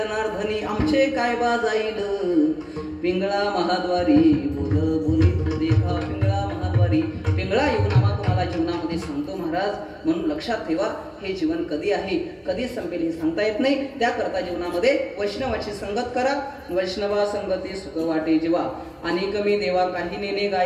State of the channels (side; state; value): both; identical; correlation 1.00